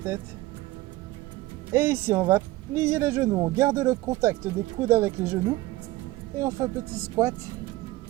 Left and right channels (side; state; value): left; quieter; 18.4 dB